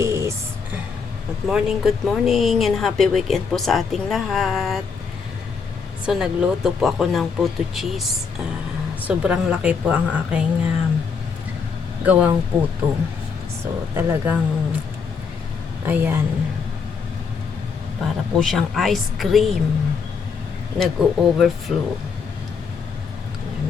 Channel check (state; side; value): quieter; right; 5.6 dB